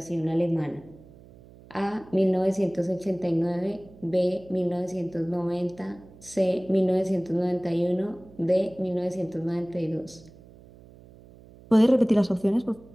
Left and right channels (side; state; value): right; noise; hum, 22 dB below the sound